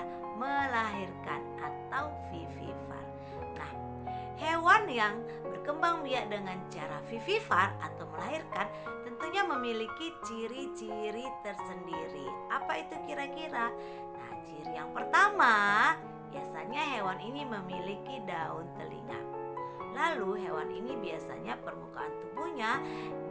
melahirkan atau vivivar. Nah, hewan yang berkembang biak dengan cara vivivar atau melahirkan tentunya memiliki ciri-ciri tersendiri. Apa itu kira-kira? Nah, ciri yang pertama, biasanya hewan ini memiliki daun telinga. Lalu hewan ini biasanya permukaan tubuhnya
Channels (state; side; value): identical; both; correlation 1.00